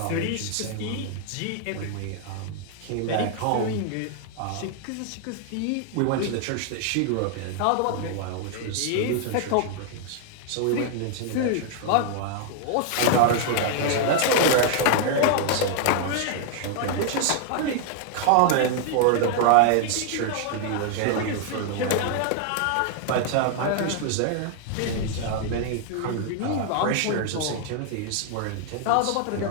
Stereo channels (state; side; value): different; both; correlation 0.00